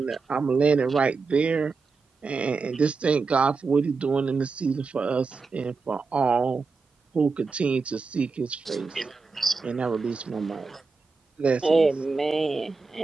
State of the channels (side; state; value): left; quieter; 4.5 dB